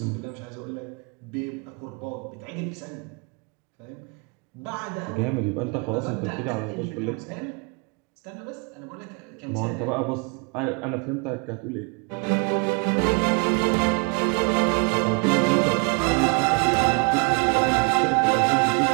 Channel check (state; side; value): quieter; left; 34.8 dB